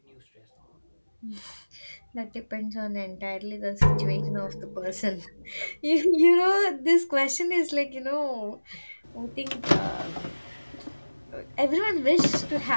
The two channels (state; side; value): inverted; both; correlation -1.00